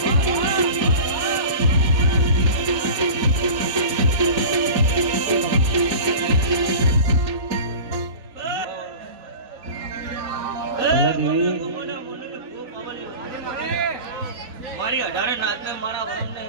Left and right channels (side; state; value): left; late; 3.3 ms